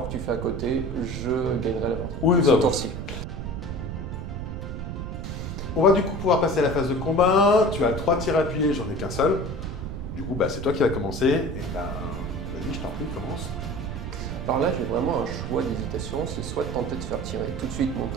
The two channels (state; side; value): noise; right; rumble, 6 dB below the sound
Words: que tu fais à côté, je gagnerai la partie. Oui, ce tour-ci. On va du coup pouvoir passer à la phase de combat. Tu as 3 tirs appuyés, j'en ai qu'un seul. Du coup, c'est toi qui vas commencer. Et vas-y, je t'en prie, commence. Alors là, j'ai vraiment un choix d'hésitation. C'est soit de tenter de faire tirer tout de suite mon